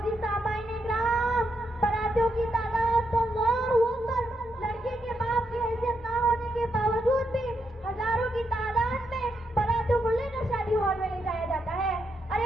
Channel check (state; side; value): normal; both; correlation 0.81